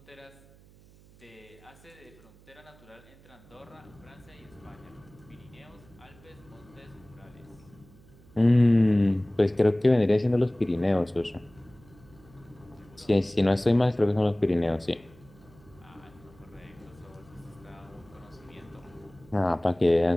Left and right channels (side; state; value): right; noise; hum, 25 dB below the sound